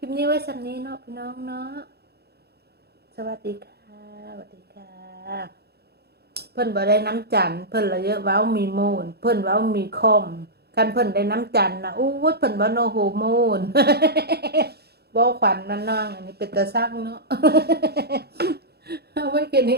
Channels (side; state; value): left; late; 0.47 ms